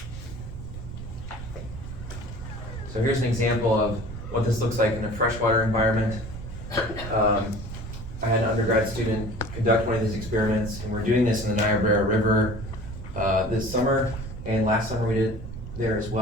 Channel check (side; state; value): right; noise; rumble, 10 dB below the sound